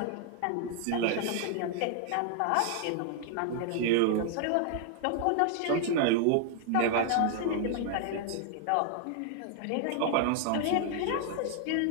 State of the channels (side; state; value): both; different; correlation 0.00